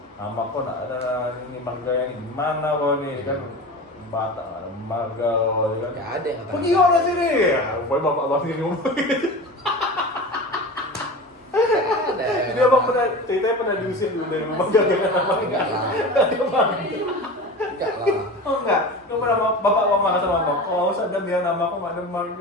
Nama kok nak ada ini mangga yang gimana kau nih kan? Batak ada mangga kan? Nggak ada yang Pergi kau dari sini. Ya, pokoknya bapak abang sendiri ngomong gitu. Ada. Jadi abang ceritanya pernah diusir dulu dari rumah gara-gara nama Enggak lah. Enggak lah. Oh enggak, kau pernah bapak abang marah sama abang. Oh sadar dia nama kok nggak ada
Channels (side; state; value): both; normal; correlation 0.31